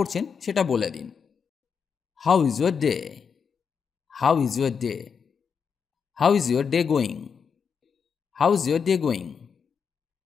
সেটা বলে দিন। How is your day. How is your day, how is your day going. How is your day going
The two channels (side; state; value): right; quieter; 6.4 dB